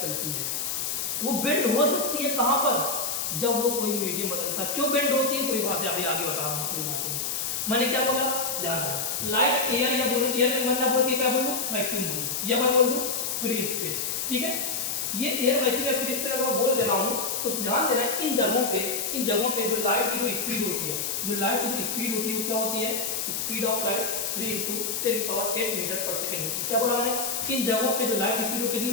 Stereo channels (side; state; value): left; noise; hiss, 1 dB below the sound